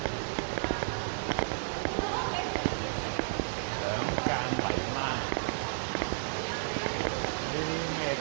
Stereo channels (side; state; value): left; silent; digital silence